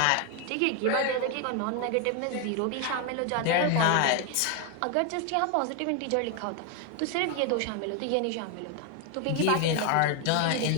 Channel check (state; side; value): different; both; correlation 0.01